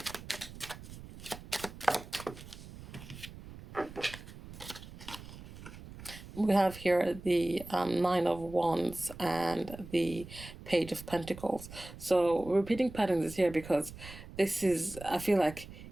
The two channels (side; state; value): right; noise; rumble, 15 dB below the sound